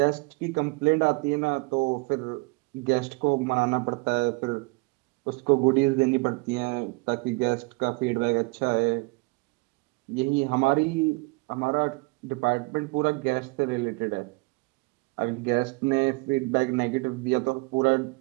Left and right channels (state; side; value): quieter; left; 27.9 dB